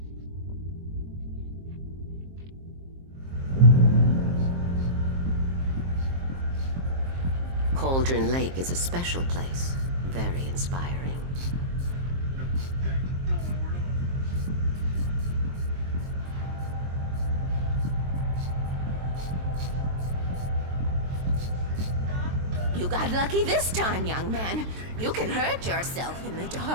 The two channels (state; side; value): late; left; 23 ms